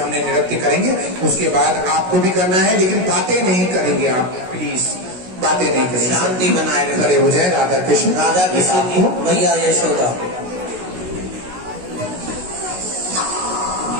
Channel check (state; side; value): late; left; 16 ms